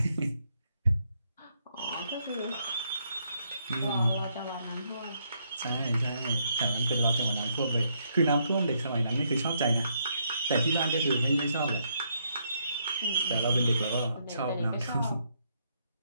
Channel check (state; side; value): inverted; both; correlation -0.75